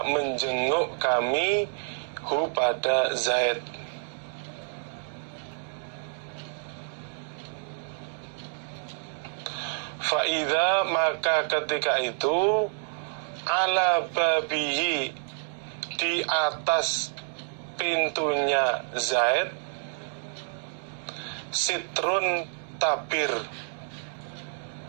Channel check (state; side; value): silent; left; 59 dB below the other